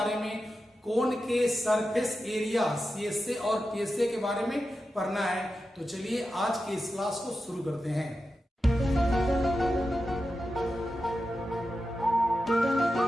में, कोण के सरफेस एरिया सीएसए और टीएसए के बारे में पढ़ना है। तो चलिए आज की इस क्लास को शुरू करते हैं।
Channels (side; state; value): both; normal; correlation 0.91